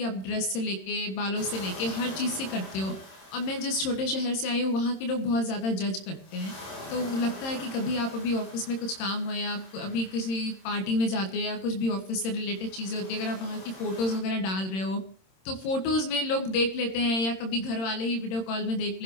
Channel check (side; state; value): right; late; 26 ms